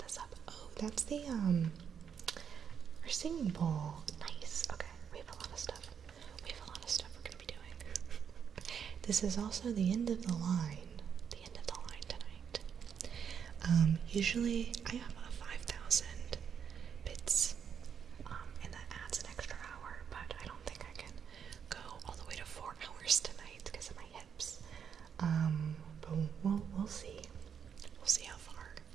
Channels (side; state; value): left; quieter; 7.5 dB